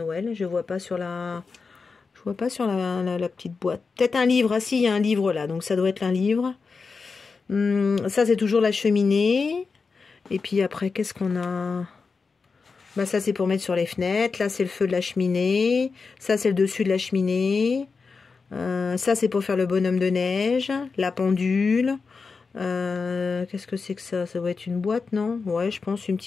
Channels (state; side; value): quieter; right; 4.7 dB